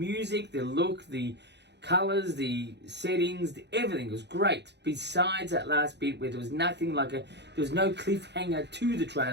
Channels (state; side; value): late; left; 0.50 ms